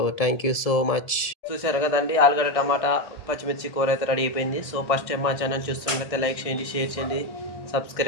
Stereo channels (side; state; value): right; late; 1.7 ms